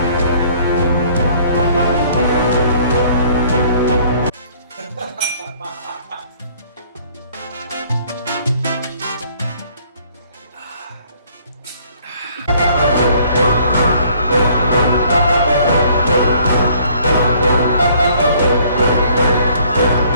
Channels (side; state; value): both; inverted; correlation -0.59